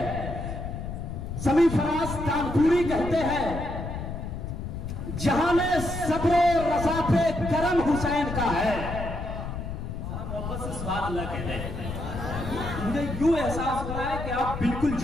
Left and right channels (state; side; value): noise; left; rumble, 6 dB below the sound